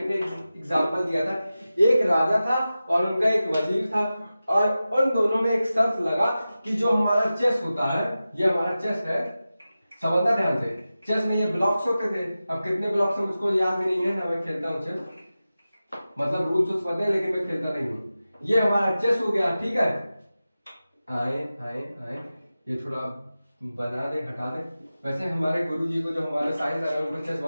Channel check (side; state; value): both; inverted; correlation -0.94